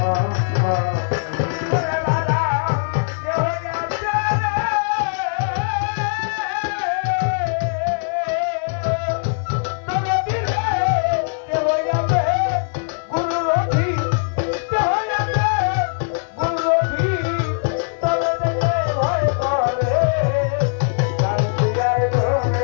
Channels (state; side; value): silent; right; 57 dB below the other